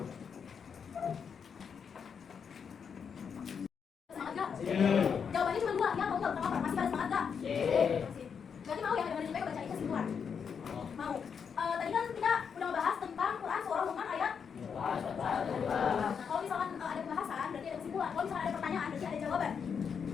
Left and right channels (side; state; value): right; quieter; 6.7 dB